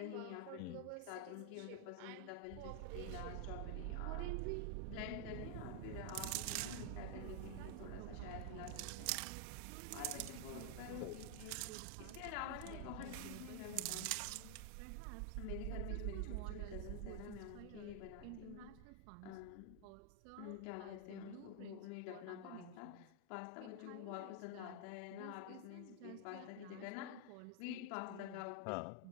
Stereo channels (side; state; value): both; different; correlation 0.00